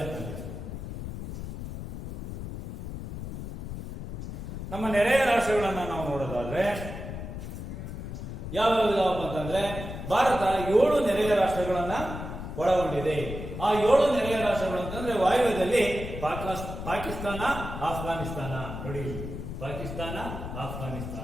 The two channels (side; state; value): left; noise; rumble, 7 dB below the sound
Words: ಅಂತಂದ್ರೆ, ನಮ್ಮ ನೆರೆಯ ರಾಷ್ಟ್ರಗಳನ್ನ ನಾವು ನೋಡೋದಾದ್ರೆ ಯಾವ್ಯಾವ ಇದಾವಪ್ಪ ಅಂತಂದ್ರೆ, ಭಾರತ 7 ನೆರೆಯ ರಾಷ್ಟ್ರಗಳನ್ನ ಒಳಗೊಂಡಿದೆ. ಆ 7 ನೆರೆಯ ರಾಷ್ಟ್ರಗಳು ಅಂತಂದ್ರೆ, ವಾಯುವ್ಯದಲ್ಲಿ ಪಾಕಿಸ್ತಾನ, ಆಫ್ಘಾನಿಸ್ತಾನ. ನೋಡಿ, ಪಾಕಿಸ್ತಾನ,